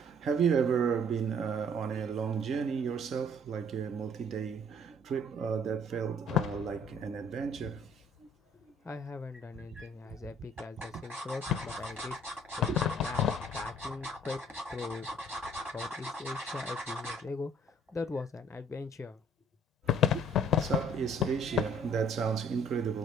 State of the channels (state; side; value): normal; both; correlation 0.57